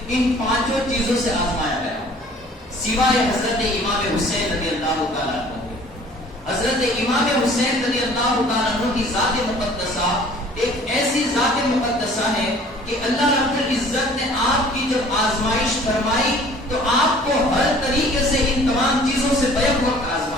ان 5 چیزوں سے آزمایا گیا، سوائے حضرت امام حسین رضی اللہ تعالیٰ عنہ۔ حضرت امام حسین رضی اللہ تعالیٰ عنہ کی ذات مقدسہ ایک ایسی ذات مقدسہ ہے کہ اللہ رب العزت نے آپ کی جب آزمائش فرمائی تو آپ کو ہر طریقے سے ان تمام چیزوں سے بیک وقت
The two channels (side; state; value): both; normal; correlation 0.51